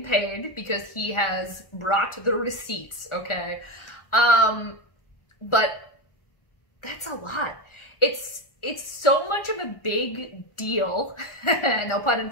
paid because he has brought the receipts, okay? But that's a lot. It's so much of a big deal, no pun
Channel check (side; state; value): right; late; 1.4 ms